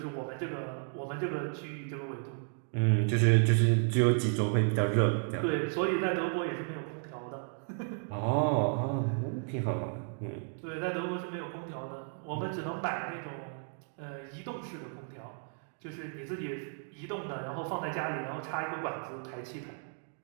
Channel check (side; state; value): left; silent; 55 dB below the other